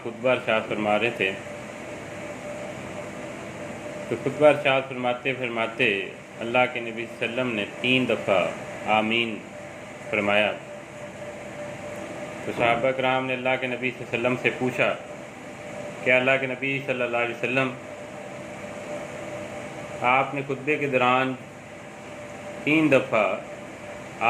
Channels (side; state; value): both; identical; correlation 1.00